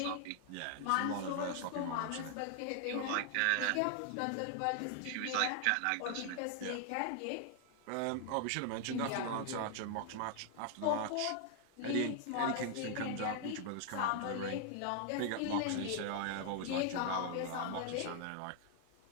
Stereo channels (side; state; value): both; different; correlation 0.00